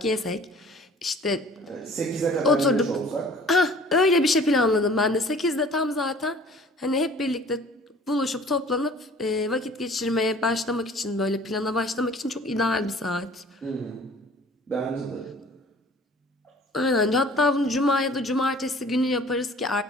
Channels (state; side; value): normal; both; correlation 0.50